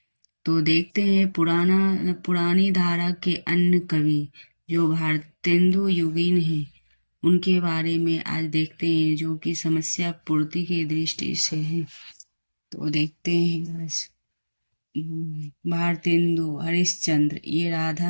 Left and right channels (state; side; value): inverted; both; correlation -1.00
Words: तो देखते हैं पुरानी धारा के अन्य कवि जो भारतेंदु युगीन हैं, उनके बारे में आज देखते हैं, जो कि समस्या पूर्ति की दृष्टि से है। तो देखते हैं आज भारतेंदु हरिश्चंद्र, ये